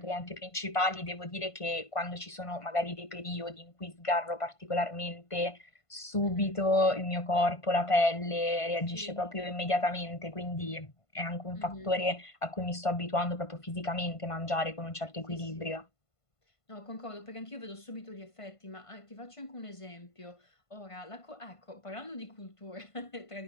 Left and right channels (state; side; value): late; right; 1.5 ms